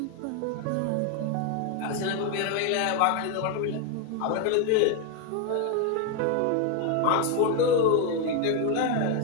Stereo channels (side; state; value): both; different; correlation 0.01